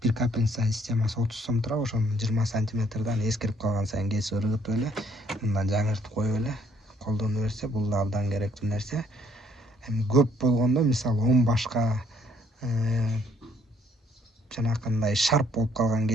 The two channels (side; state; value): both; normal; correlation 0.65